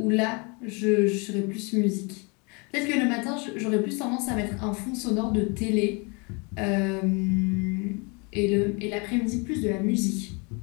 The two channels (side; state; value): right; quieter; 31.1 dB